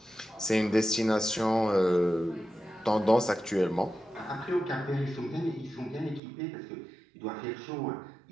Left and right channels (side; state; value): left; drops out; at 6.2 s